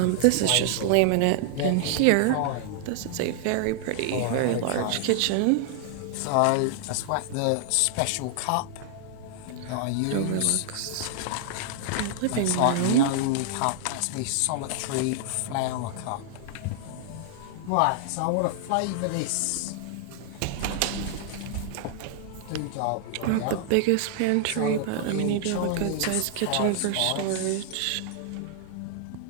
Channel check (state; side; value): different; both; correlation 0.00